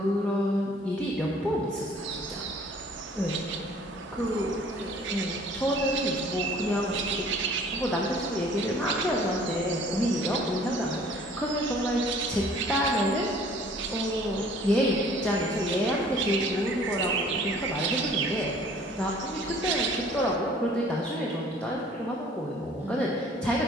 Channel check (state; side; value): normal; both; correlation 0.53